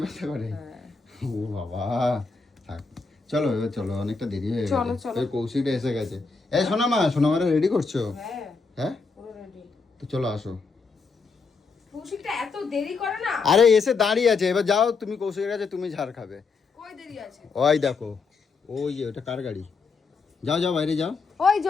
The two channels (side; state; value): right; quieter; 4.6 dB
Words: ব্যথা করে? হ্যাঁ। ও বাবা, থাক চলো এবার চলো, অনেকটা দেরি হয়ে চলো, গেছে। চলো। ওই কৌশিকটা এসে গেছে। এই সোনামারে রেডি করছো? হ্যাঁ হ্যাঁ পুরো রেডি। তো চলো আসো। কৌশিকটা এত দেরি করে না। আরে এসে দাঁড়িয়ে আছে, এবার যাও তুমি কৌশিকের কাছে, তুমি ঝাড় খাবে। কই দেরি আছে? ওই দেখো, ওই যে ওটা কার গাড়ি? যাও যাও বাইরে যাও। ওই